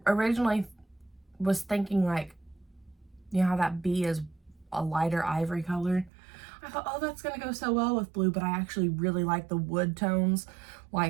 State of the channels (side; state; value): left; drops out; at 6.1 s